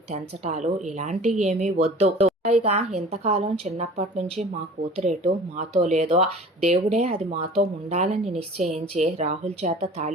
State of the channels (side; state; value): both; normal; correlation 0.44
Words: తెంచటాలు ఇలాంటివి ఏమీ వద్దు, పైగా ఇంతకాలం చిన్నప్పటి నుంచి మా కూతురేటు మాతో లేదో, దేవుడే అది మాతో ఉండాలని నిశ్చయించి రాహుల్ చేత